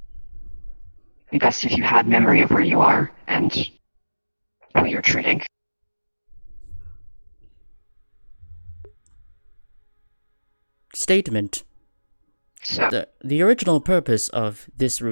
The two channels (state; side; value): inverted; both; correlation -1.00